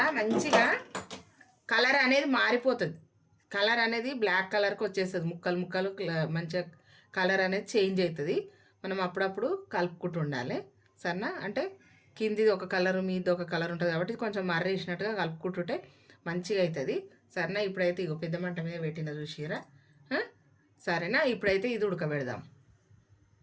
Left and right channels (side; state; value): both; identical; correlation 1.00